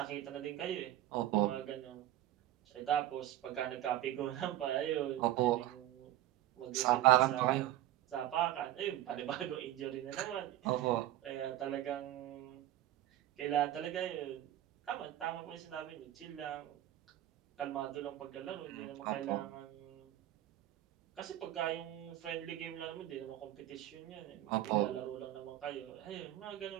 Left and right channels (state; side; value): quieter; left; 13.7 dB